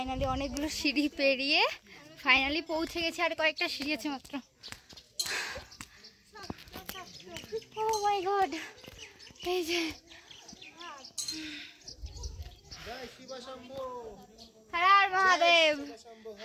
অনেকগুলো সিঁড়ি পেরিয়ে ফাইনালি পৌঁছে গেছি, আর কয়েকটা সিঁড়ি আছে মাত্র। ও মাই গড, এই যে হর হর মহাদেব,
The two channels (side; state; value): both; identical; correlation 1.00